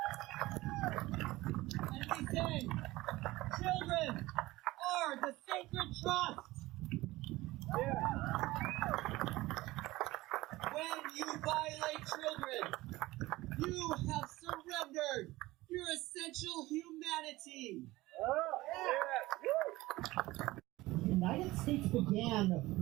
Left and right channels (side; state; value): left; quieter; 18.8 dB